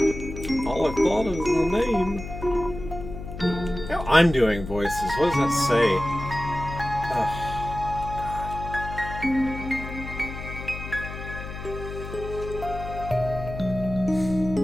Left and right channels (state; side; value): noise; left; hum, 9 dB below the sound